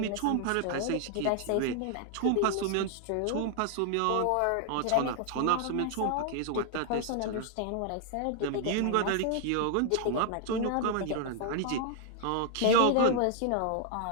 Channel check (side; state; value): both; different; correlation 0.00